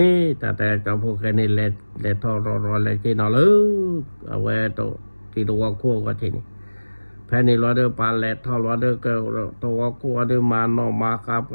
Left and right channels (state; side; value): inverted; both; correlation -1.00